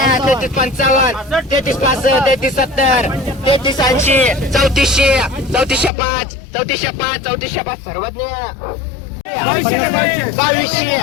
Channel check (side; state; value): right; drops out; at 5.9 s